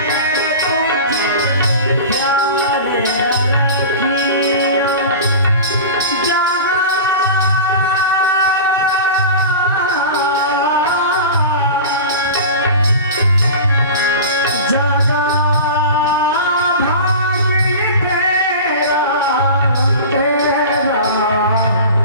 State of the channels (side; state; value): both; inverted; correlation -0.33